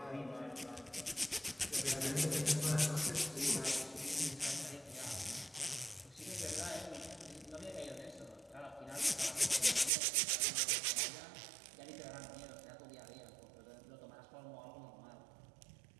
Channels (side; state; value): left; drops out; at 9.9 s